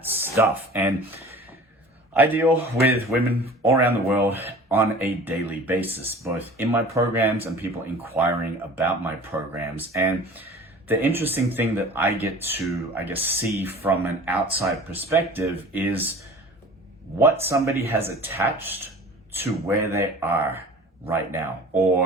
stuff. And I deal with women all around the world on a daily basis, both in my programs and people inquiring about my programs. And the interesting thing that I get to, see from an outside perspective is what somebody has attached to where they are right now,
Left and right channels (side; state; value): both; normal; correlation 0.43